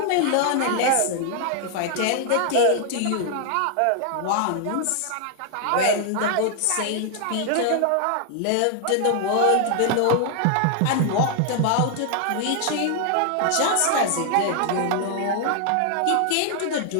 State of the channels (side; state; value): both; different; correlation 0.00